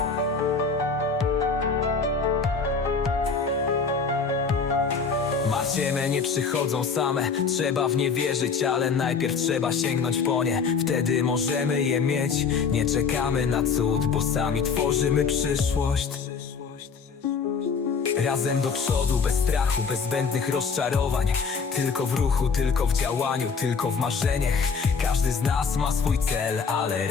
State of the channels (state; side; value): quieter; right; 5.4 dB